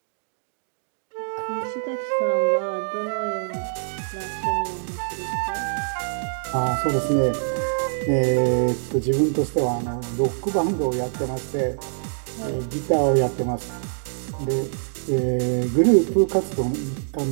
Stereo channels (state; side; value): silent; left; digital silence